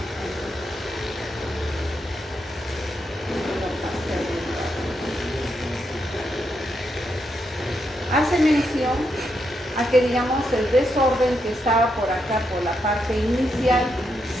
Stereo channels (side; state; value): both; normal; correlation 0.81